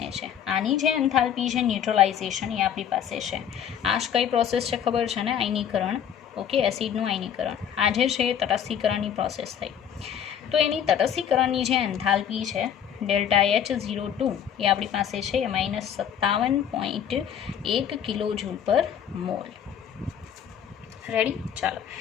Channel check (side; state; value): right; quieter; 9.0 dB